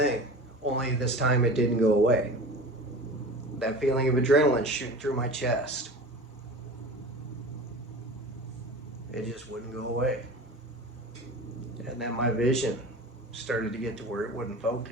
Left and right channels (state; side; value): normal; both; correlation 0.35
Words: only this time it didn't go away. That feeling of adrenaline shooting through my chest. It just wouldn't go away. And then my vision started to get to where it wouldn't